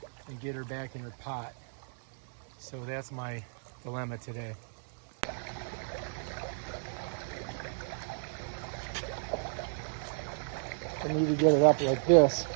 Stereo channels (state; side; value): silent; left; 56 dB below the other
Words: and get her back in her pot. So that's my dilemma today. I need to get it up like this.